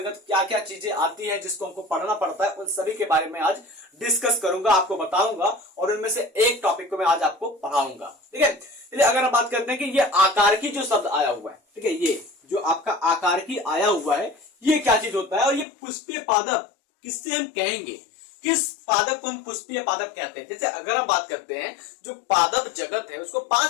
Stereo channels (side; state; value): right; drops out; at 15.7 s